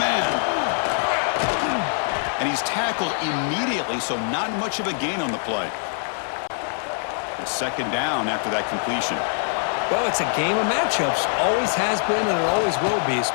man. And he's tackled immediately, so not much of a gain on the play. It's 2nd down after that completion. Well, it's a game of matchups. Always has been, and it always will be,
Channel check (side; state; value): right; silent; digital silence